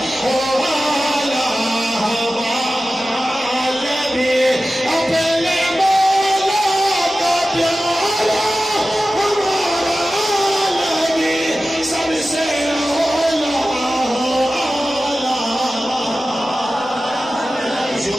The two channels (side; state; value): both; normal; correlation 0.95